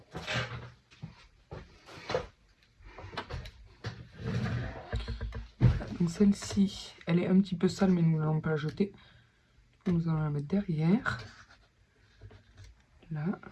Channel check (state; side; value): identical; both; correlation 1.00